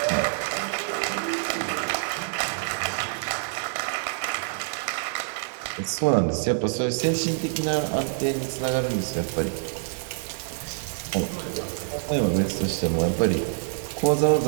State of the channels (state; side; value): silent; left; digital silence